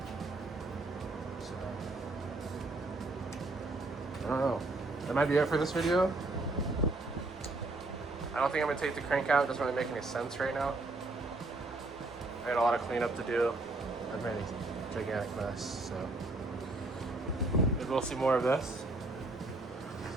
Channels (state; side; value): quieter; left; 3.0 dB